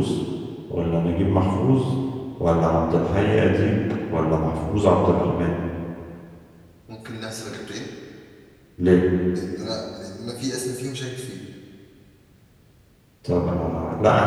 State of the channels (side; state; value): both; identical; correlation 1.00